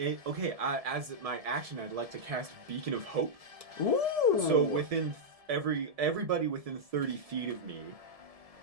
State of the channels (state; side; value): late; left; 1.7 ms